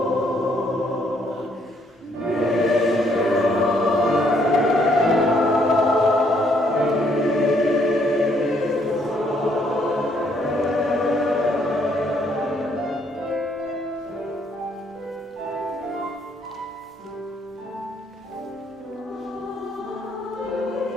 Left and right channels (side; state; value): both; normal; correlation 0.69